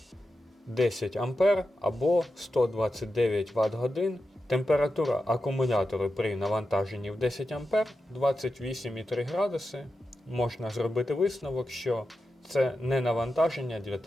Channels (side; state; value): both; normal; correlation 0.90